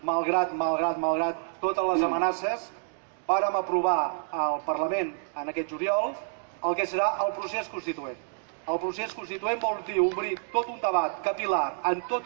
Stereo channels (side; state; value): left; silent; digital silence